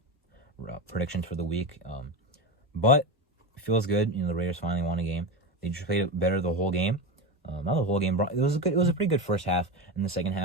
predictions for the week. But it feels good. The Raiders finally won a game. They just played better the whole game. Not the whole game. It was a pretty good first half. In the second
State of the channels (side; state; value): both; normal; correlation 0.19